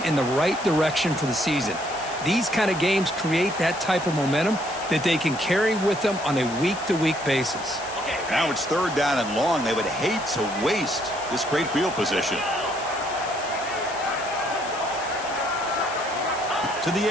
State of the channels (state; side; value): noise; left; hiss, 14 dB below the sound